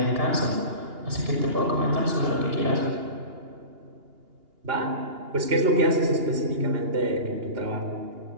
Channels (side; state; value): left; late; 2.8 ms